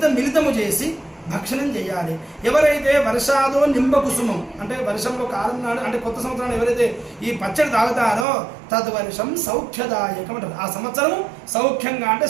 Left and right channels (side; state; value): left; drops out; at 8.2 s